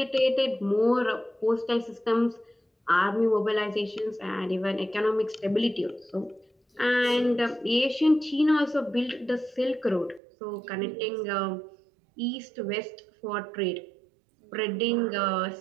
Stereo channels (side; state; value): left; drops out; at 10.2 s